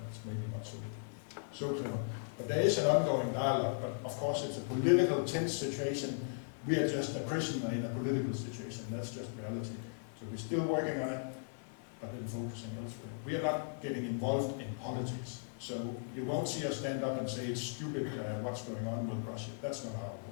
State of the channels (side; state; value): right; silent; 53 dB below the other